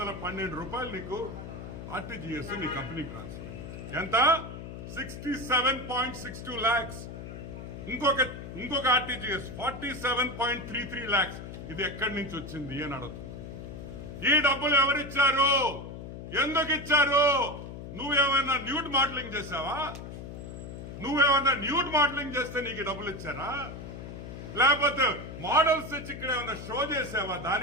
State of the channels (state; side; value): noise; left; hum, 10 dB below the sound